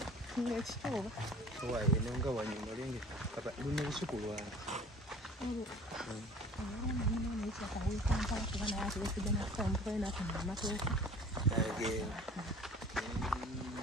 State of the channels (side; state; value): both; normal; correlation 0.46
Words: eno nga wanyuma lenge luna lusuku lwange